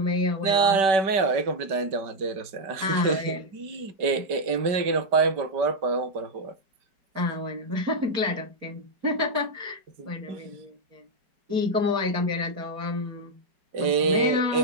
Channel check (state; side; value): late; left; 5.2 ms